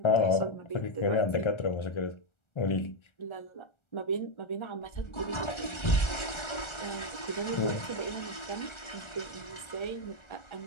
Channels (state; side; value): late; right; 1.4 ms